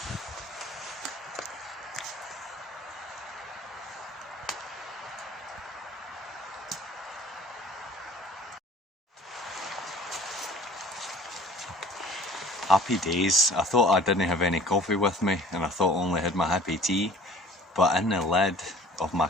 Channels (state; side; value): normal; both; correlation 0.49